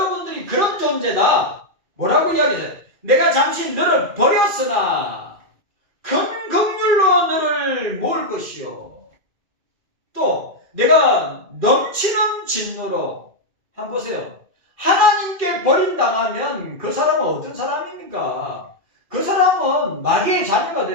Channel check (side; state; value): left; late; 2.4 ms